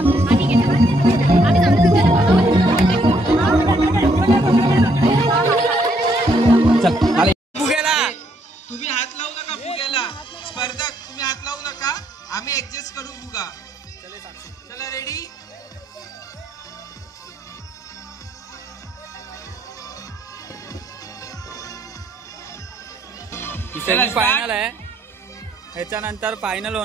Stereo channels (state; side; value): normal; both; correlation 0.71